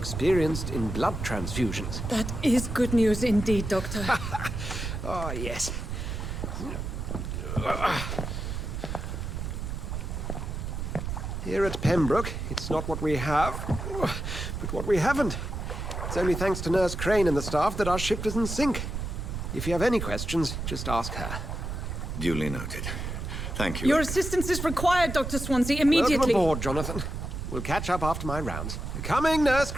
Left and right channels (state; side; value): noise; right; rumble, 5 dB below the sound